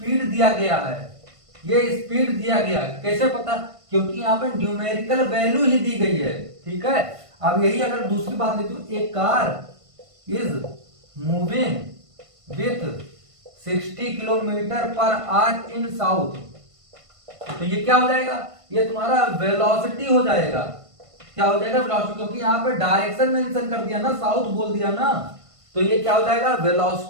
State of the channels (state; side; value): late; left; 1.5 ms